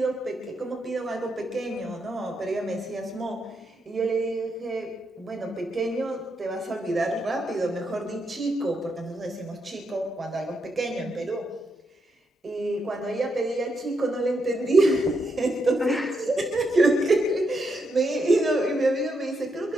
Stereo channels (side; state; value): both; normal; correlation 0.81